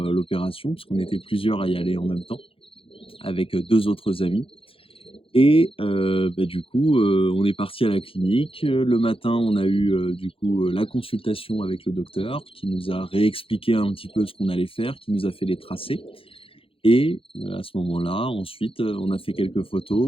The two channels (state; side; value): late; right; 0.27 ms